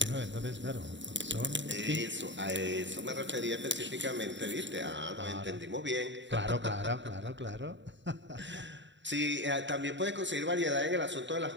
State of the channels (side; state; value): left; late; 0.53 ms